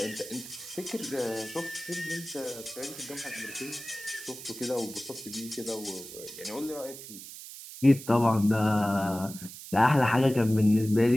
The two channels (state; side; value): noise; right; hiss, 13 dB below the sound